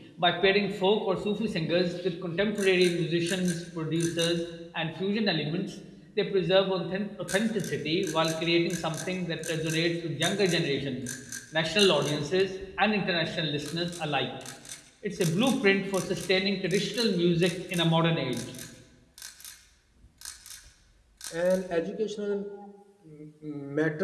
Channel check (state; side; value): identical; both; correlation 1.00